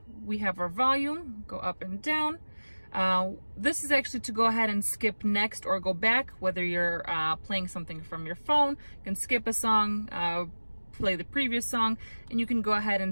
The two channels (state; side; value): inverted; both; correlation -1.00